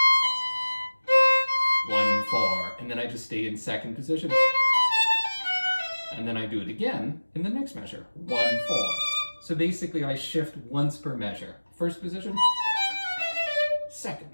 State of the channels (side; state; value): both; inverted; correlation -1.00